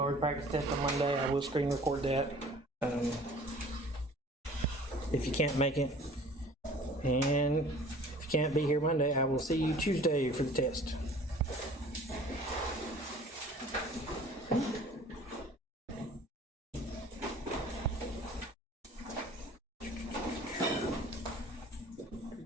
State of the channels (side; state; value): both; normal; correlation 0.48